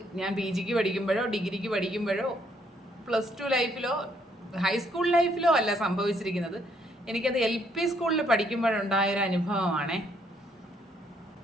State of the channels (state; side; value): normal; both; correlation 0.70